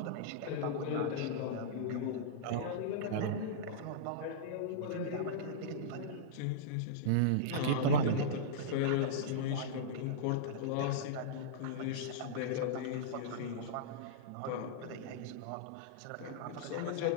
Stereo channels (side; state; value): both; different; correlation -0.03